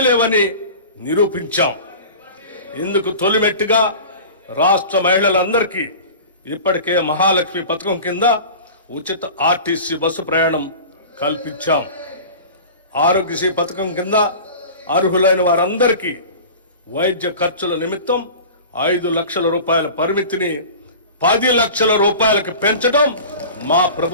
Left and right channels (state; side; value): inverted; both; correlation -0.37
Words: లేవని నిరూపించాం. ఇందుకు తొలిమెట్టుగా రాష్ట్ర మహిళలందరికీ ఇప్పటికే మహాలక్ష్మి పథకం కింద ఉచిత ఆర్టీసీ బస్సు ప్రయాణం కల్పించాం. ఆరోగ్యశ్రీ పథకం కింద అర్హులైన వారందరికీ వైద్య ఖర్చుల నిమిత్తం 5 లక్షల రూపాయల పరిమితిని 10 లక్షల రూపాయలకు పెంచడం మా